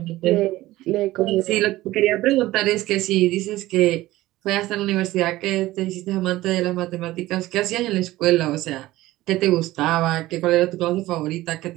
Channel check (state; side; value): quieter; left; 16.9 dB